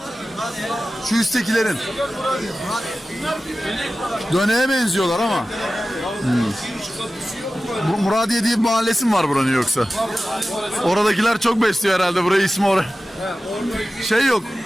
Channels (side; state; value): both; normal; correlation 0.95